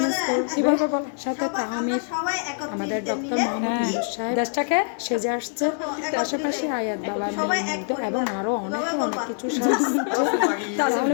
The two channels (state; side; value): silent; right; digital silence